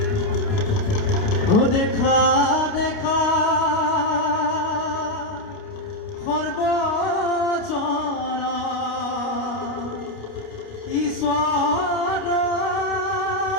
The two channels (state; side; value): late; right; 29 ms